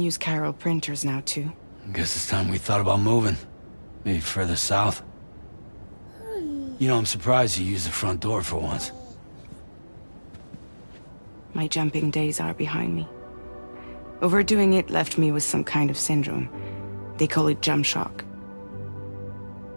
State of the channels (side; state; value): both; inverted; correlation -1.00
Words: Carol printers now, too. Guess it's time we thought about moving. Maybe further south. You know, I'm surprised you used the front door for once. My jumping days are behind me. Overdoing it left me with some kind of syndrome. They call it jump shock.